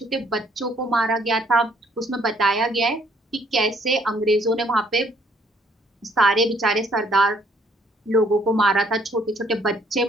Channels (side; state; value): both; normal; correlation 0.65